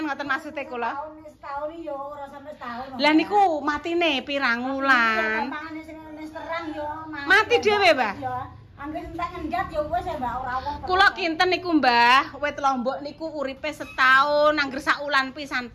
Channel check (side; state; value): both; identical; correlation 1.00